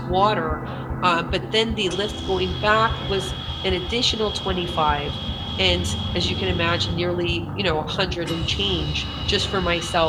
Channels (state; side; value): identical; both; correlation 1.00